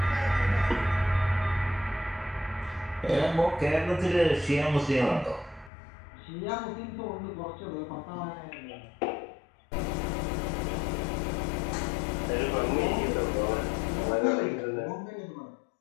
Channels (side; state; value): right; drops out; at 5.7 s